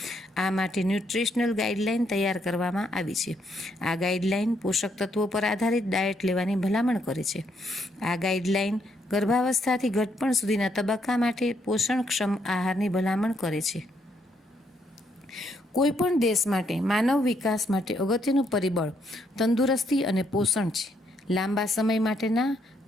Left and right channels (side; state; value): both; normal; correlation 0.74